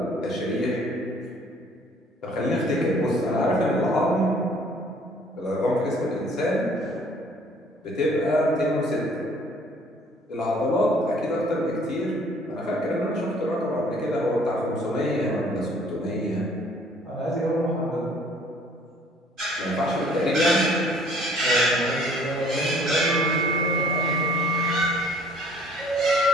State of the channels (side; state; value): both; normal; correlation 0.57